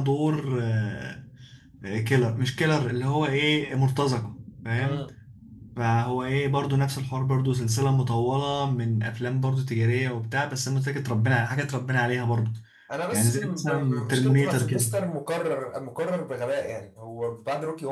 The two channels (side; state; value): both; identical; correlation 1.00